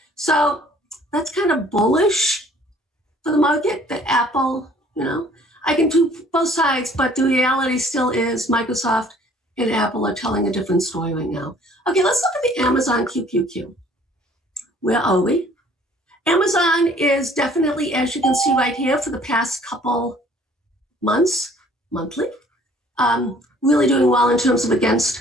So that's kind of bullish for the market that Apple, you know, I can do both sides, but the reality still is Microsoft and Apple are telling a different story right now. Okay, let's look at the Amazon QQQ. Where are we? Amazon is definitely, as you can see right here, for the past couple months, monthly, really doing well in terms of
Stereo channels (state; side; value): normal; both; correlation 0.56